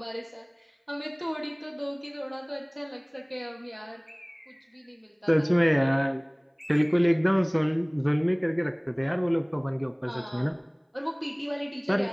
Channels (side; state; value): both; identical; correlation 1.00